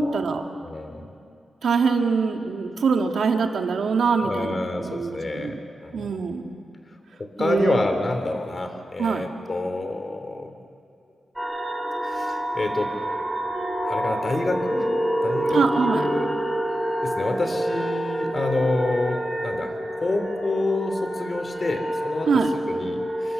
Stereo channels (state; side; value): normal; both; correlation 0.89